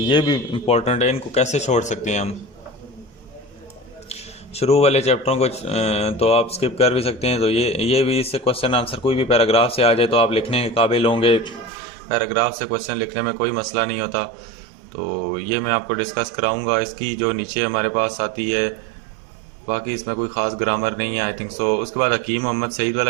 भी इम्पोर्टेंट है। इनको कैसे छोड़ सकते हैं हम। शुरू वाले चैप्टरों को तो आप स्किप कर भी सकते हैं। तो ये भी, इससे क्वेश्चन आंसर कोई भी पैराग्राफ से आ जाए तो आप लिखने के काबिल होंगे। पैराग्राफ से क्वेश्चन लिखने में कोई मसला नहीं होता। तो ये मैं आपको डिस्कस कराऊंगा। इसकी जो नीचे हमारे पास आती है, बाकी इसमें कोई ख़ास ग्रामर नहीं है आई थिंक सो। उसके बाद हकीम मोहम्मद सईद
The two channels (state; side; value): drops out; left; at 11.7 s